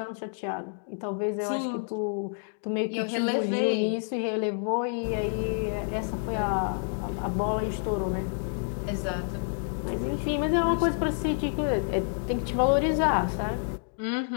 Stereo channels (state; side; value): silent; right; 59 dB below the other